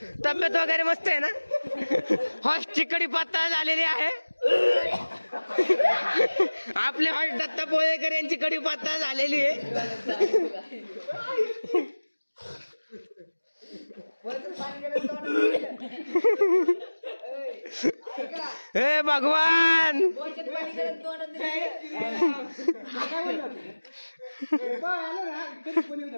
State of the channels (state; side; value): inverted; both; correlation -1.00